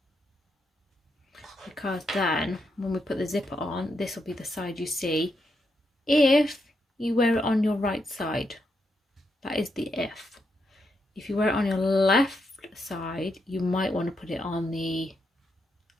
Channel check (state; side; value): normal; both; correlation 0.82